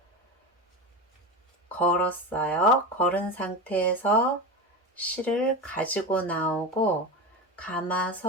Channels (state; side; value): normal; both; correlation 0.22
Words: 걸었어요. 걸은 상태에서 실을 가지고 나오고